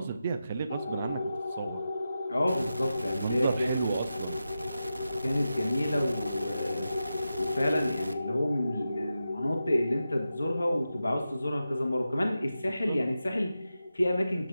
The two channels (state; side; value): inverted; both; correlation -0.91